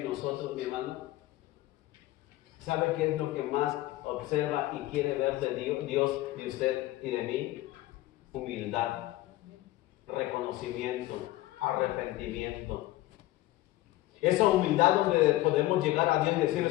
nosotros, mi hermano? ¿Sabe qué es lo que más observa y quiere ver de Dios, de usted y de mí? Humildad, reconocimiento, arrepentimiento. Esa humildad donde podemos llegar a Dios y decirle,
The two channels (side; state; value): right; quieter; 16.9 dB